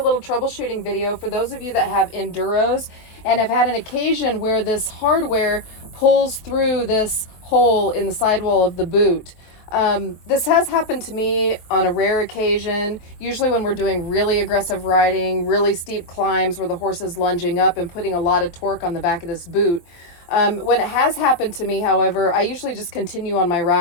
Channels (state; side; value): late; right; 23 ms